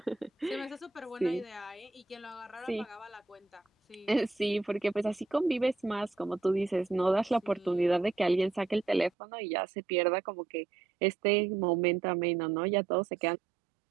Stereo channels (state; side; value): drops out; left; at 9.1 s